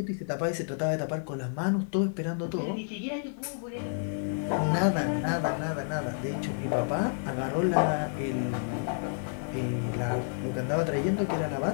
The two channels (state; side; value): silent; right; 58 dB below the other